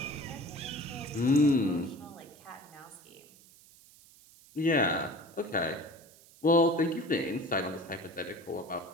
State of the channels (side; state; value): right; noise; hiss, 24 dB below the sound